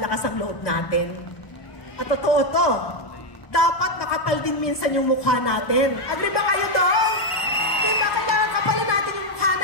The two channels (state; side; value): late; right; 1.0 ms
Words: ang loob natin? At totoo to, dapat makapal din minsan yung mukha natin. Agree ba kayo doon? Di ba kailangan kapalan natin yung mukha